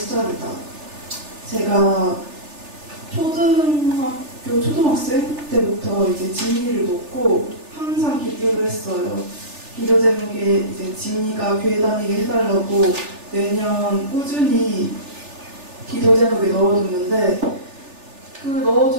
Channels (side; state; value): left; late; 3.4 ms